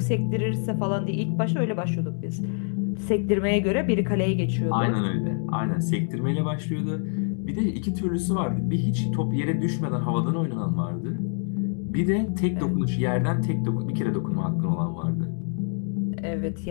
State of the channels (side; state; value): right; silent; 56 dB below the other